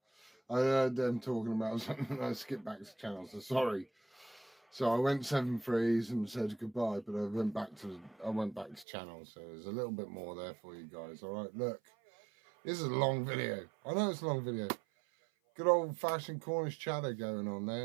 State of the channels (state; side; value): drops out; left; at 8.8 s